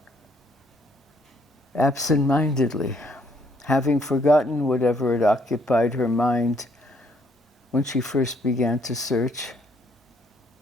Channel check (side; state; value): both; normal; correlation 0.68